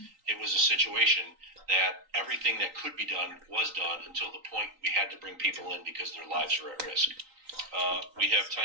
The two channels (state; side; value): late; left; 3.9 ms